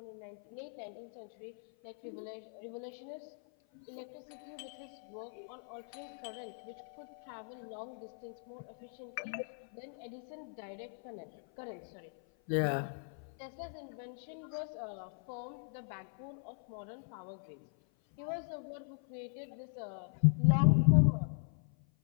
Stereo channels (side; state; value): right; silent; 52 dB below the other